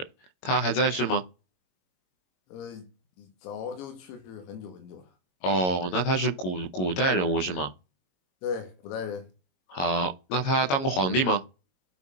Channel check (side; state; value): right; late; 22 ms